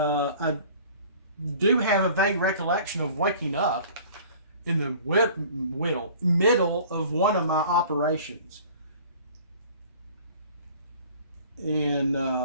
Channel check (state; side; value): inverted; both; correlation -0.48